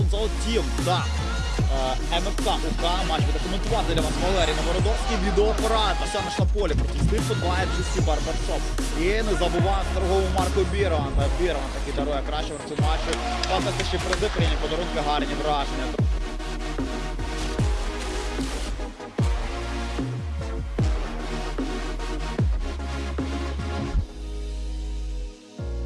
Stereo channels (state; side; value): identical; both; correlation 1.00